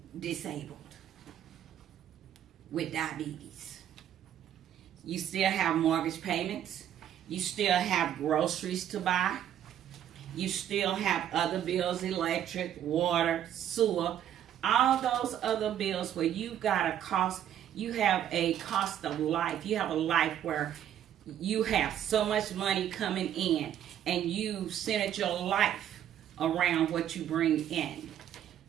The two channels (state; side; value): quieter; left; 10.6 dB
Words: disabled with diabetes. You still have mortgage payments. You still have groceries to buy. You still have other bills, electric, water, sewer, all those other bills where you've got a cost. You have a cost of life. You have a life where you have so much money coming in, and you centered your life around what you bring in.